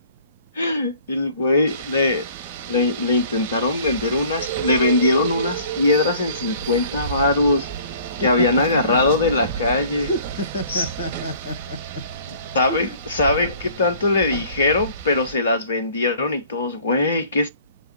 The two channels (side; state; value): both; inverted; correlation -0.53